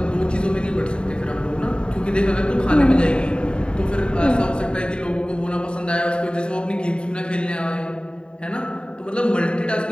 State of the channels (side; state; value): right; late; 0.052 ms